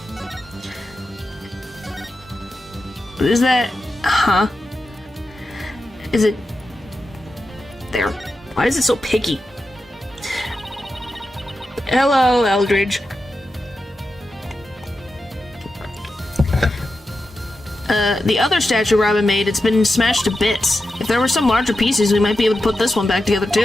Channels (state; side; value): normal; both; correlation 0.90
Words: What is that? Huh? Is it... there. Why is it so picky? Hello, Eldridge. The other statue Robin made, it's been smashed to bits. If there were some larger pieces, we might be able to put this one back together